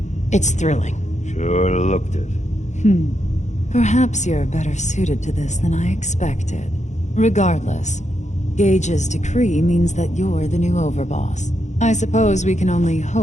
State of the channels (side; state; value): right; late; 0.34 ms